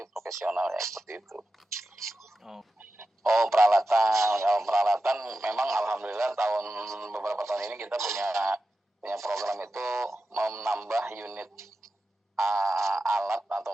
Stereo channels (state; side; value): normal; both; correlation 0.92